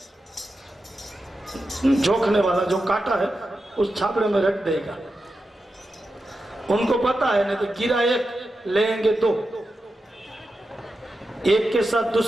जोखने वाला जो काटा है उस छापड़े में रख देगा। उनको पता है नहीं तो गिरा एक लेंगे 2, एक के साथ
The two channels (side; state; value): both; normal; correlation 0.90